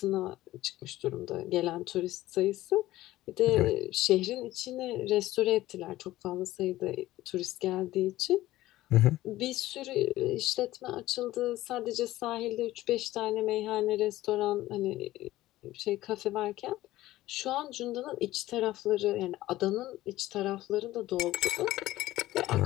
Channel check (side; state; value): right; quieter; 16.0 dB